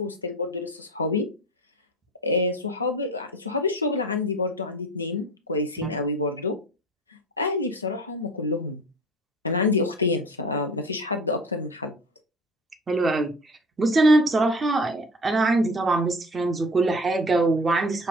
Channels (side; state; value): both; normal; correlation 0.38